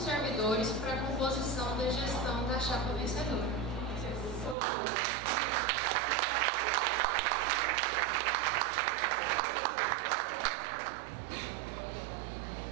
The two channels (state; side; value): drops out; left; at 4.5 s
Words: para a composição da gestão da chapa vencedora.